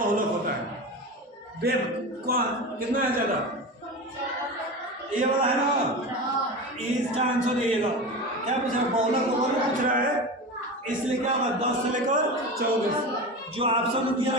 होता है, बेब कौन कितना है ज्यादा, ये वाला है ना, इसका आंसर ये लो, क्या पूछ रहा है, बहुलक का वर्ग पूछ रहा है, इसलिए क्या होगा 10 से लेकर 24, जो ऑप्शन दिया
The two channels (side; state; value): both; normal; correlation 0.27